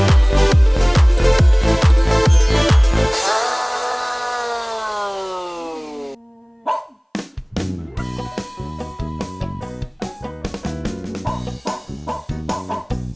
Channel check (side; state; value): both; identical; correlation 1.00